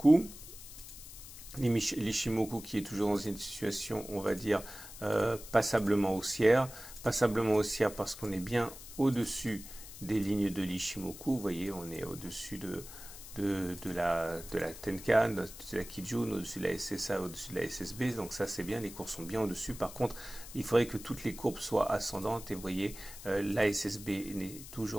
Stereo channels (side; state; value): left; noise; hiss, 14 dB below the sound